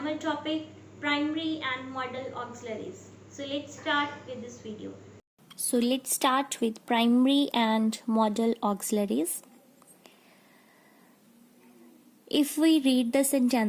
topic primary and modal auxiliaries. So let's start with this video. So let's start with primary and modal auxiliaries. If we read the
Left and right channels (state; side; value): identical; both; correlation 1.00